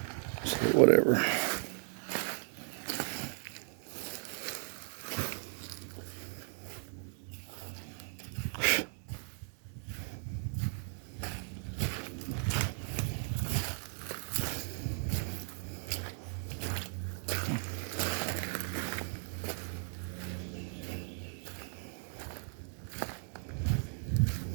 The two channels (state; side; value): silent; left; 53 dB below the other